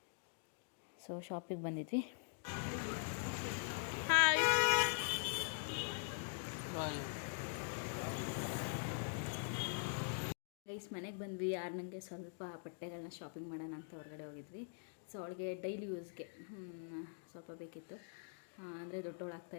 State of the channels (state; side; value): silent; right; digital silence